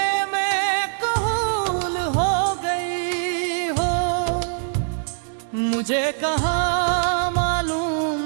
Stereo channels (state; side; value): silent; left; digital silence